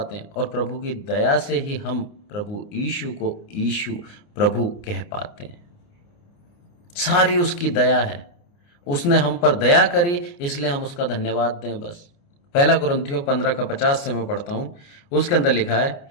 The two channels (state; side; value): late; right; 29 ms